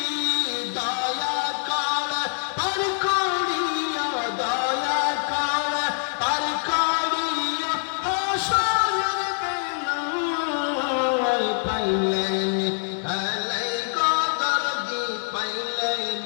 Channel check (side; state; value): right; silent; 62 dB below the other